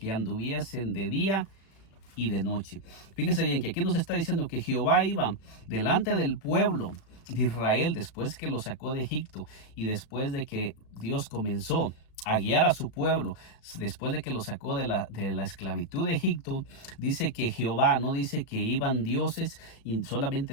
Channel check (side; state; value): right; late; 36 ms